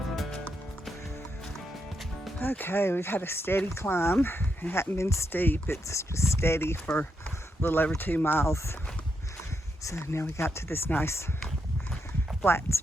Okay, we've had a steady climb. It hadn't been steep, it's just steady for a little over 2 miles. So now we got to this nice flat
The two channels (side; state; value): both; normal; correlation 0.82